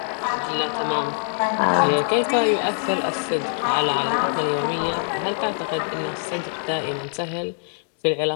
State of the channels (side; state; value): right; silent; digital silence